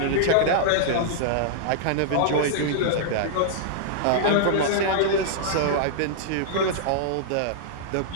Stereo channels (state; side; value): different; both; correlation -0.02